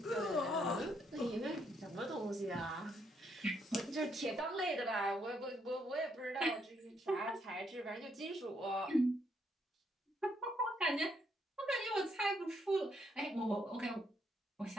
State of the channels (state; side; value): normal; both; correlation 0.74